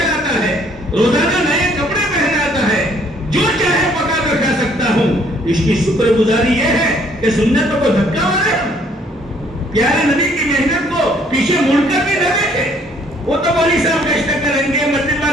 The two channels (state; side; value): normal; both; correlation 0.63